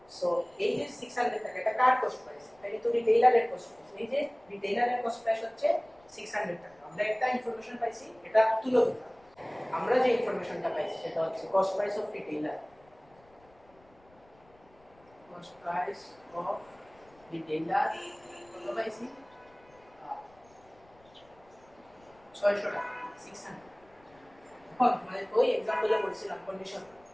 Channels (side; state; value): left; noise; rumble, 30 dB below the sound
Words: সো এই যে 600 টাকা, এটা কার কস্ট প্রাইস? এটা কিন্তু রিটেইলারের কস্ট প্রাইস। এই যে রিটেইলারের কস্ট প্রাইস হচ্ছে 600 টাকা। আমরা একটা ইনফরমেশন পাইছি, এটা তুলে দিলাম। আমরা যে ইনফরমেশনটা পাইছি সেটা হচ্ছে cost price of retailer, cost price of retailer কত পাইছি? 600 টাকা, 600। এখন মানে ওই एग्जांपल এ বলছিলাম কন্ডিশন,